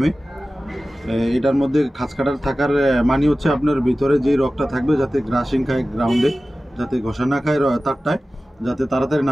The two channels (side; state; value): both; normal; correlation 0.96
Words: এটার মধ্যে খাঁচকাটার থাকার মানে হচ্ছে আপনার ভিতরে যে রকটা থাকবে যাতে গ্রাসিং খায় গ্রাউন্ডে, যাতে ঘষা না খায় তারটায়, যাতে তাড়াতাড়ি